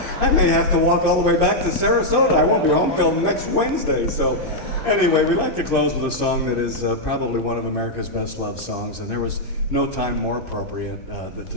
I may have to walk all the way back to Sarasota. I won't be home till next Wednesday. So anyway, we like to close with a song that is probably one of America's best loved songs, and there was no time more appropriate to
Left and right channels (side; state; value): right; late; 2.6 ms